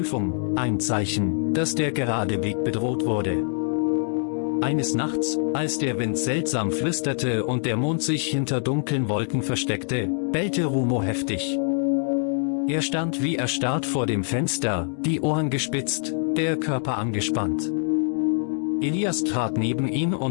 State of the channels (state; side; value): silent; right; 62 dB below the other